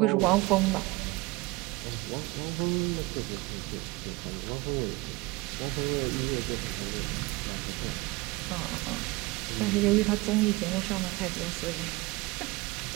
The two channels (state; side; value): quieter; left; 22.8 dB